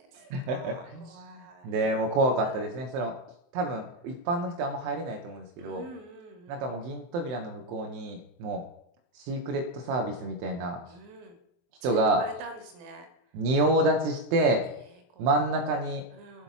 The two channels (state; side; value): late; left; 24 ms